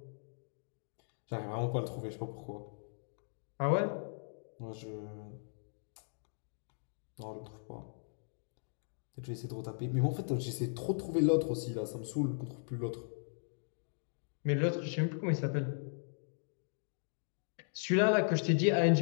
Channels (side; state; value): right; silent; digital silence